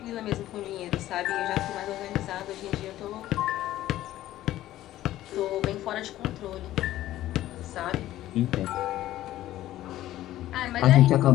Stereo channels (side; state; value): right; quieter; 14.2 dB